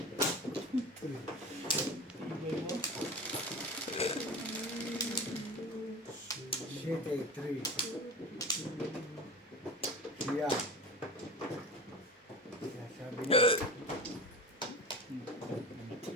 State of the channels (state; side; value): normal; both; correlation 0.31